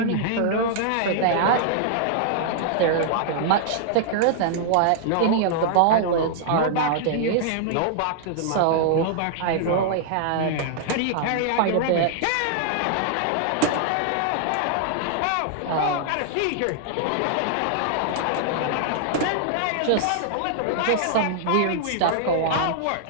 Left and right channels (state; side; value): different; both; correlation -0.01